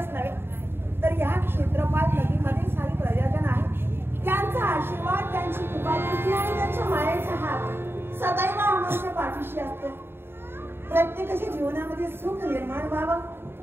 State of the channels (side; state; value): left; late; 0.11 ms